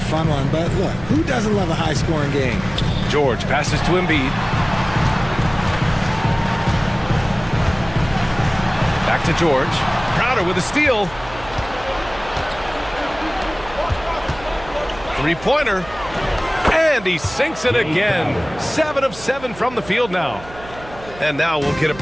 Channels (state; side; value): noise; right; hum, 17 dB below the sound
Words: one, but look, who doesn't love a high-scoring game? George passes to Embiid. Back to George. Crowder with a steal. Three-pointer. And he sinks it again. 7 of 7 from the field now. And now we'll get a